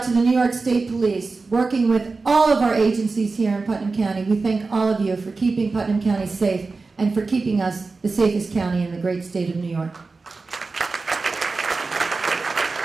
to the New York State Police, working with all of our agencies here in Putnam County. We thank all of you for keeping Putnam County safe and for keeping us the safest county in the great state of New York.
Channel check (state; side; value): quieter; left; 4.0 dB